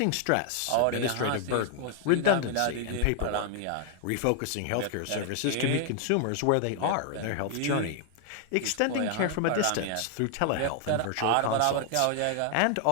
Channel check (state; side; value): different; both; correlation 0.00